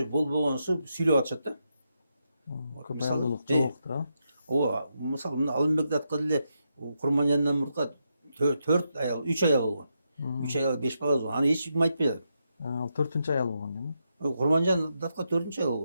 болбогонсу сүйлөп атышат да. Көп аялдуулук жок да. Ооба, мисалы мына Алымбек Татка деле Курманжандан мурда 4 аял, 3 аял болгон. 3 аял 5 бала болгон. Аны эч ким айтпай жатат. Ал 4-нчү аял болгон дейм. Курманжан Татка 4-нчү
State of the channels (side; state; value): both; inverted; correlation -0.83